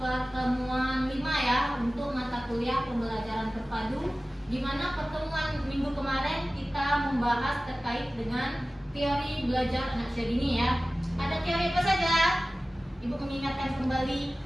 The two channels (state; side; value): normal; both; correlation 0.97